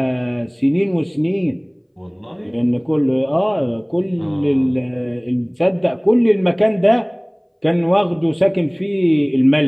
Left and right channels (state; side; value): identical; both; correlation 1.00